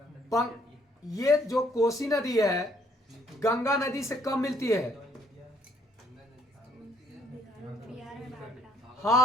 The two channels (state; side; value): normal; both; correlation 0.66